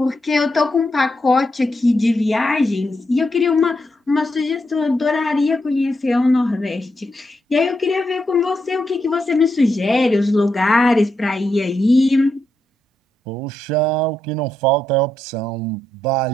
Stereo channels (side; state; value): both; normal; correlation 0.83